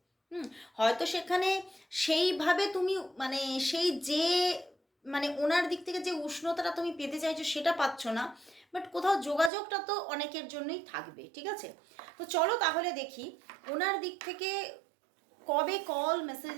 হয়তো সেখানে সেইভাবে তুমি মানে সেই যে মানে ওনার দিক থেকে যে উষ্ণতাটা তুমি পেতে চাইছো সেটা পাচ্ছ না, বাট কোথাও যোগাযোগটা তো অনেকের জন্যই থাকবে, ঠিক আছে? তো চলো তাহলে দেখি ওনার দিক থেকে কবে কল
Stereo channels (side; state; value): left; drops out; at 9.5 s